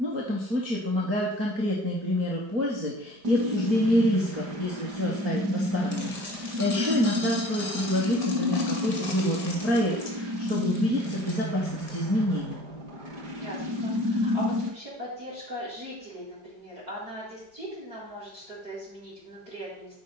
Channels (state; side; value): late; left; 4.3 ms